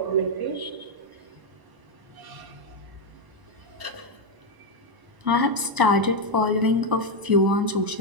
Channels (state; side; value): late; left; 1.0 ms